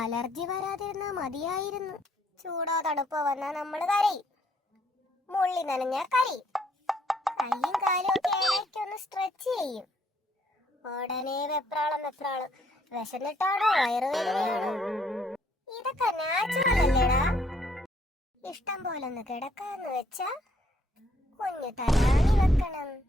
അലർജി വരാതിരുന്നാ മതിയായിരുന്നു. ചൂടോ തണുപ്പോ വന്നാ നമ്മള് കരയും. മുള്ളി നനഞ്ഞാ കരയും. കയ്യും കാലും ഒക്കെ ഇടയ്ക്കൊന്ന് സ്ട്രെച്ച് ചെയ്യും. ഉടനെ വെപ്രാളം. വിശന്നിട്ടാണോ വയറുവേദനയാണോ? ഇതൊക്കെ നാച്ചുറൽ അല്ലേടാ. ഇഷ്ടം പോലെ ഒന്ന് കിടക്കാന്ന് വെച്ചാ കുഞ്ഞു തലാണി വെക്കണം.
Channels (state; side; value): normal; both; correlation 0.68